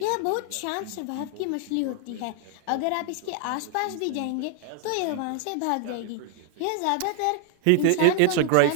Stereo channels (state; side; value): different; both; correlation 0.00